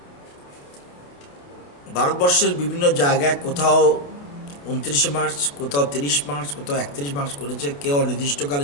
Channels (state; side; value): late; right; 28 ms